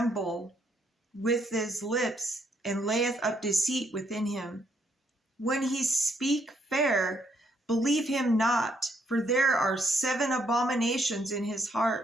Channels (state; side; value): normal; both; correlation 0.72